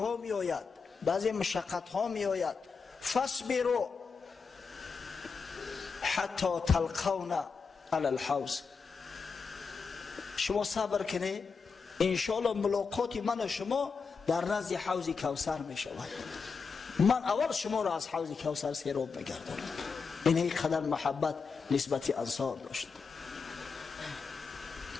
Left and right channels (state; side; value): quieter; right; 5.2 dB